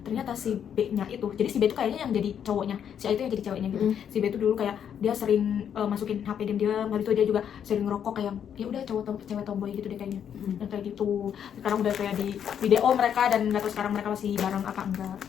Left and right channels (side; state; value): right; quieter; 8.7 dB